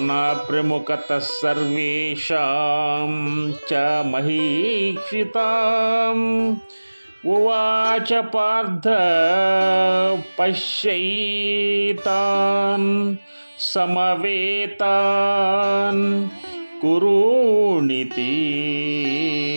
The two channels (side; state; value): both; inverted; correlation -1.00